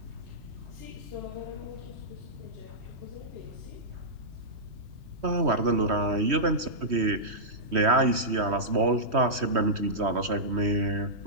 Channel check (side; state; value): left; late; 3.1 ms